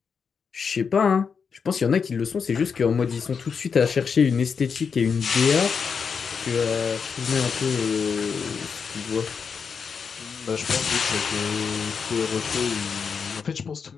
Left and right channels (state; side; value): quieter; right; 6.0 dB